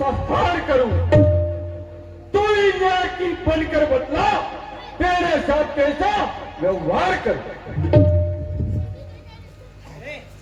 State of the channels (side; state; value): both; identical; correlation 1.00